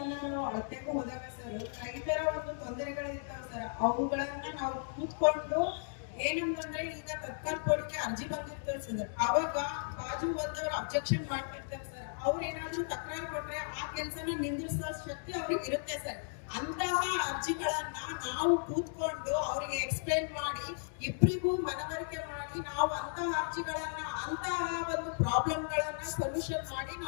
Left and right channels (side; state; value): right; silent; digital silence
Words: ನಾವು ಅಳತೆಗೂ ಹೋದಾಗ ಸರ್, ರೈತರ ಒಂದು ತೊಂದರೆಗಳಿರ್ತಾವ ಸರ್. ಅವುಗಳನ್ನ ನಾವು ಕೂತ್ಕೊಂಡು ಏನಂತಂದ್ರೆ, ಈಗ ತತ್ಕಾಲ್ ಕೋರ್ಟ್ಗೆ ಅರ್ಜಿ ಬಂದಿರ್ತದೆ ಸರ್, ಅವಾಗ ಬಾಜು ಬಂದವರು ಅಬ್ಜೆಕ್ಷನ್ ಮಾಡ್ತಿರ್ತಾರೆ ಸರ್. ಅವ್ರು ಏನಾದ್ರು ತಕರಾರು ಕೊಟ್ರೆ ಆ ಕೆಲಸನ ನಿಂದಿಸೋ ಶಕ್ತಿ ಅವ್ರಿಗೆ ಇರುತ್ತೆ ಸರ್. ಅಂತಹ ಅರ್ಜಿಗಳನ್ನ ನಾವು ಕೂತ್ಕೊಂಡು ಅವರಿಗೆ ಎಕ್ಸ್ಪ್ಲೈನ್ ಮಾಡಿ, ಇಬ್ಬರಿಗೂ ಮನವರಿಕೆ ಮಾಡಿ, ನಾವು ಅಂತಹ ಅರ್ಜಿಗಳನ್ನ, ಅಂತಹ ಒಂದು ಪ್ರಾಬ್ಲಮ್ಗಳನ್ನ ಸೊಲ್ಯೂಷನ್ ಮಾಡಿ